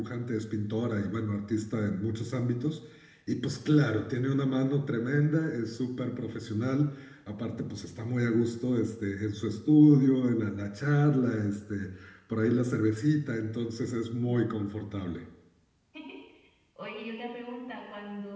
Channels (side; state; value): both; identical; correlation 1.00